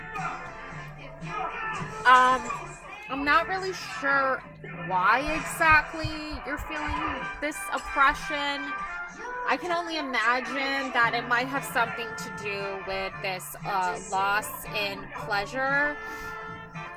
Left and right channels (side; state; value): both; identical; correlation 1.00